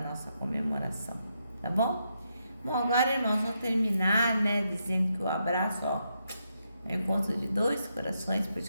comemoração, tá bom? Bom, agora, irmãos, vou terminar, né, dizendo que o abraço, ó, é o encontro de dois corações, por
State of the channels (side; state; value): both; inverted; correlation -0.81